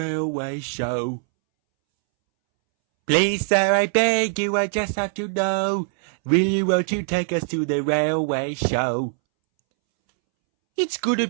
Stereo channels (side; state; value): left; silent; 64 dB below the other